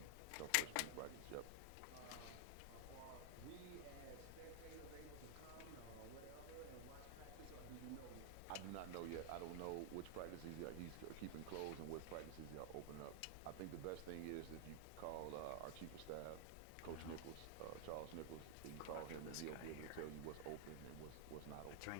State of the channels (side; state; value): both; different; correlation 0.00